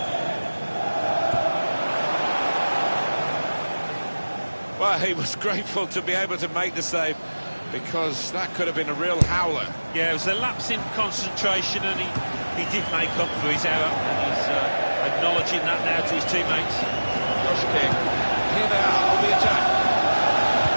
Well, he was grateful to be able to make the save, because that could have been a real howler. Yeah, it was a lapse in concentration, and he did make up for his error, and he's acknowledging that now to his teammates. Josh King. Here they are on the attack.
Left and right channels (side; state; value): both; inverted; correlation -1.00